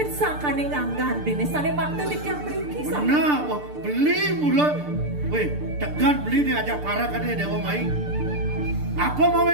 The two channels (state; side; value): late; left; 6.8 ms